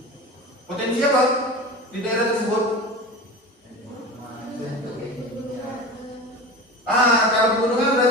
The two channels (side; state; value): both; normal; correlation 0.31